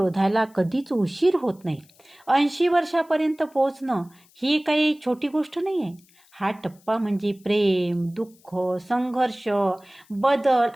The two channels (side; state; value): left; noise; hiss, 30 dB below the sound